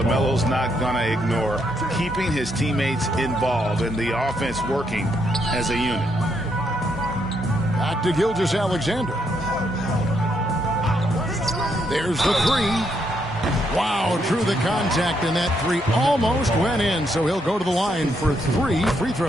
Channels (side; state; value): both; normal; correlation 0.76